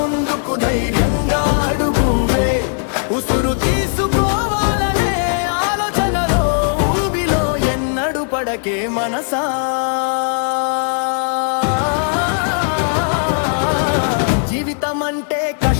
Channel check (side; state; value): right; silent; digital silence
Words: ధైర్యంగా అడుగువే, ఉసురు తీసుకోవాలనే ఆలోచనలో ఊబిలో ఎన్నడు పడకే మనసా. జీవితం అంటే